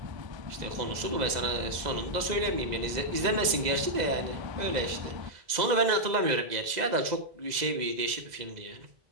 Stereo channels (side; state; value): left; late; 2.0 ms